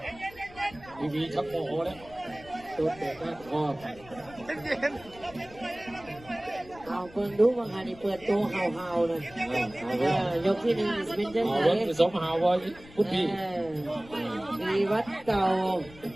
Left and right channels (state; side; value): noise; left; rumble, 21 dB below the sound